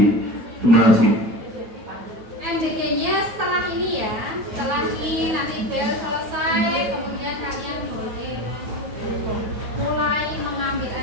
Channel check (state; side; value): late; left; 9.3 ms